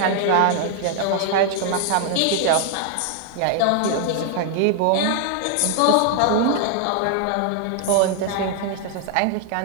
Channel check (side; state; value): both; different; correlation 0.00